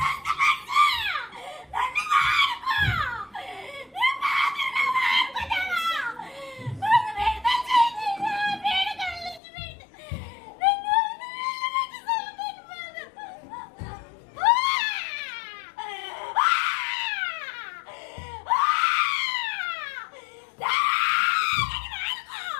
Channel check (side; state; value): right; drops out; at 9.4 s